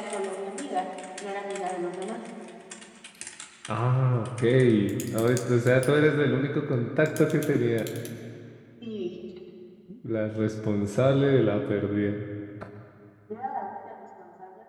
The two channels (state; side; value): identical; both; correlation 1.00